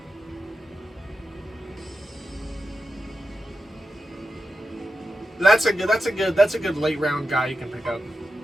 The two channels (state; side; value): normal; both; correlation 0.90